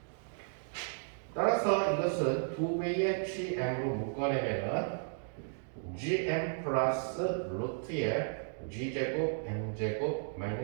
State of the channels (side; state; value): left; silent; digital silence